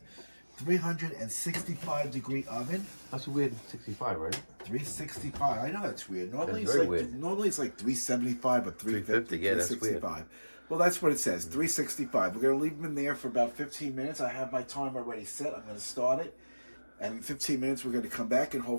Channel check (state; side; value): inverted; both; correlation -1.00